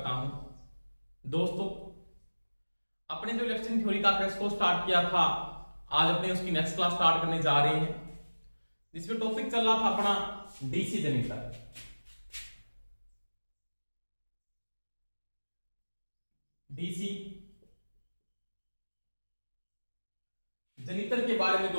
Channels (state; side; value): inverted; both; correlation -1.00